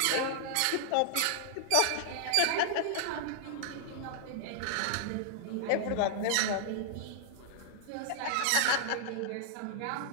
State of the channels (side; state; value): both; different; correlation -0.01